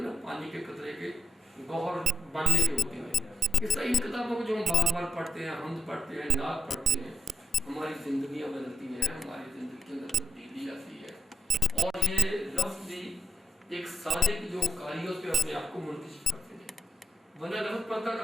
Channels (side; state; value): both; normal; correlation 0.77